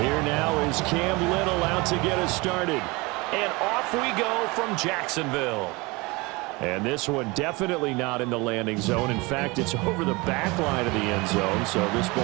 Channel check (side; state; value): left; quieter; 24.7 dB